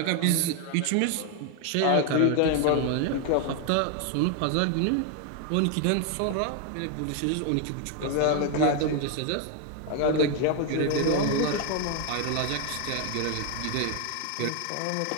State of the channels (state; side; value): different; both; correlation 0.01